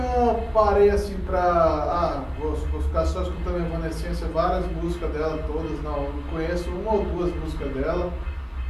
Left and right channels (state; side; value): identical; both; correlation 1.00